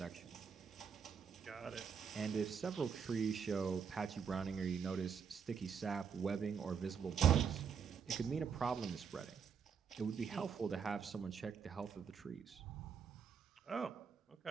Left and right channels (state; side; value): quieter; left; 6.7 dB